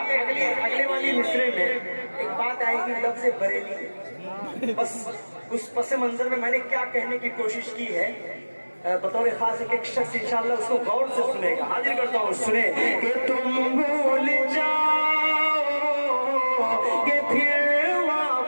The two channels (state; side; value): inverted; both; correlation -1.00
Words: अगले वाली मिसरे में एक बात आएगी लफ्ज़ बरेली। बस उस पस मंजर में मैंने क्या कहने की कोशिश की है, बतौर खास एक शख्स इंशाअल्लाह उसको गौर से सुनेगा। हाजिर करता हूँ, सुने कि तुम भूल जाओ कि फिर